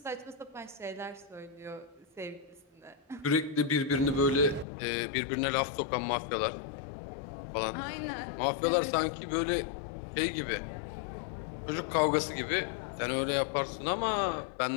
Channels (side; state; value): right; drops out; at 4.7 s